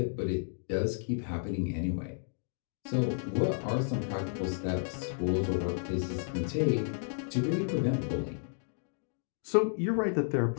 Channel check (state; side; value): silent; right; digital silence